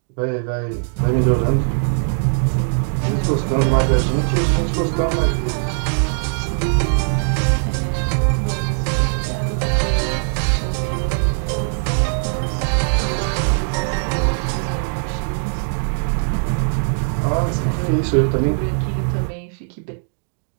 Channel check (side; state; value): left; silent; digital silence